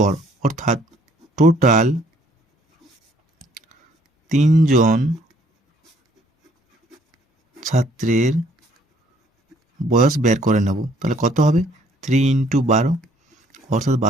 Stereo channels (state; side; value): normal; both; correlation 0.63